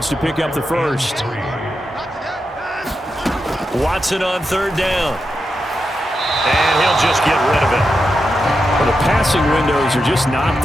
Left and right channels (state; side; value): normal; both; correlation 0.87